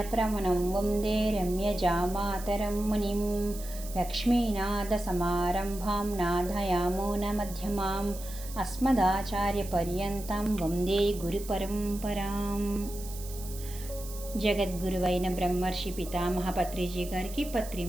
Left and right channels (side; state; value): right; noise; hiss, 14 dB below the sound